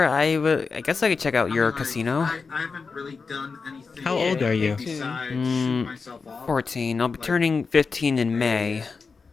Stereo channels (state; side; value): quieter; right; 4.8 dB